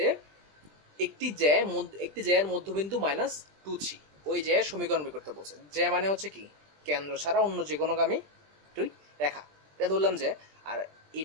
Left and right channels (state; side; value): late; left; 20 ms